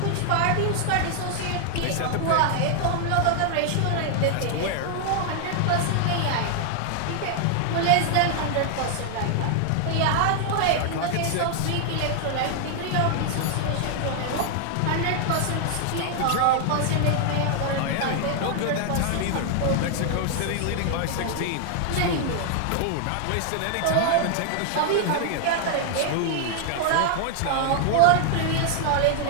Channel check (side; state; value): both; different; correlation 0.00